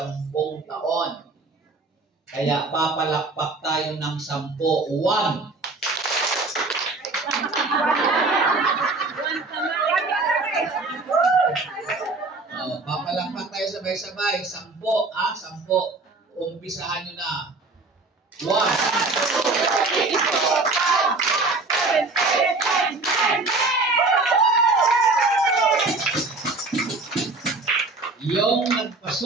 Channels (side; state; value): left; quieter; 3.5 dB